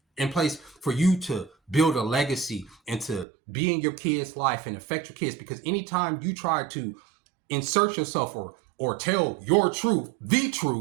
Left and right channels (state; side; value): drops out; left; at 3.2 s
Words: in place for you to build a legacy and to be in your kids' life and affect your kids. Because anytime you try to insert yourself or tell your truth, the